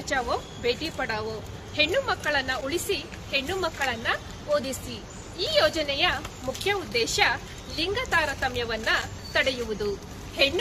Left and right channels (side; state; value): both; identical; correlation 1.00